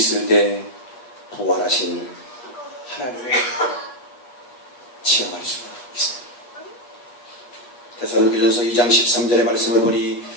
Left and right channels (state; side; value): late; right; 8.3 ms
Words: 때 부활하신 하나님을 체험할 수가 있습니다. 데살로니가전서 2장 13절의 말씀을 보니